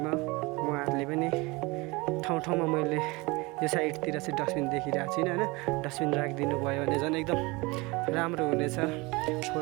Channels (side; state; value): left; quieter; 24.5 dB